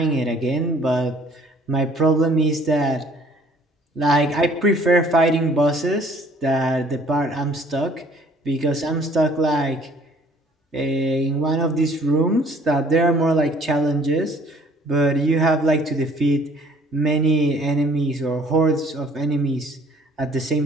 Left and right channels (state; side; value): normal; both; correlation 0.57